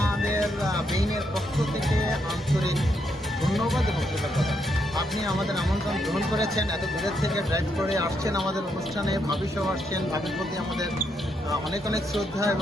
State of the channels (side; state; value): both; normal; correlation 0.77